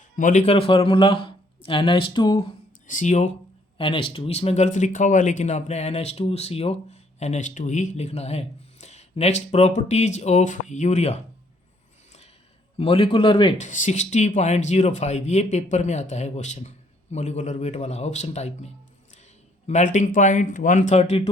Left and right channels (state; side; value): normal; both; correlation 0.65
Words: molecular formula NH2CO NH2। इसमें गलत लिखा हुआ है लेकिन आपने NH2CO NH2 ही लिखना है। Next, properties of urea. Molecular weight 60.05, ये पेपर में आता है क्वेश्चन, मॉलिक्यूलर वेट वाला ऑप्शन टाइप में। Melting point